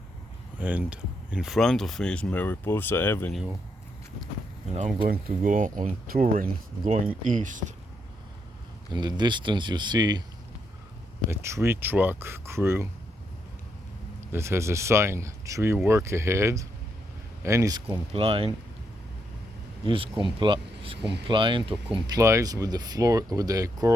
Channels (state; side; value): normal; both; correlation 0.78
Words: And in front of me is Mariposa Avenue. And I'm going to go on Turin, going east. In the distance you see a tree truck crew that has a sign, tree work ahead, and is compliant or complies with the